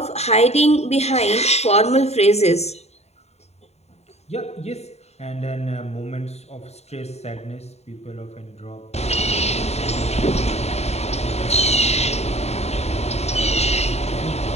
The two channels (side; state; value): right; late; 0.31 ms